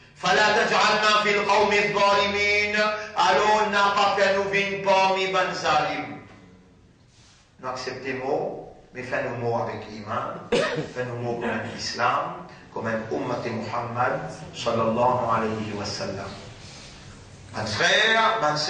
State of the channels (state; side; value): identical; both; correlation 1.00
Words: fala taj'alna fil qawmi adh-dhalimin, alors n'a pas fait nous vivre parmi man zalim. Nous acceptons mot. Mais fais-nous mots avec l'iman, fais-nous mots comme un islam, comme un ummat Muhammad, sallallahu alayhi wa sallam. Mon frère, ma